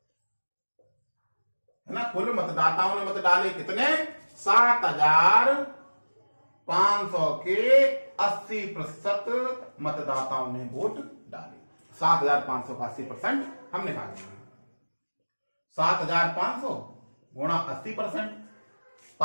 है ना, कुल मतदाताओं ने मत डाले कितने, 7,500 के 80% मतदाताओं ने वोट डाले। 7,500 का 80% हम निकालेंगे, 7,500 गुणा 80%,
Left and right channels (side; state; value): both; inverted; correlation -1.00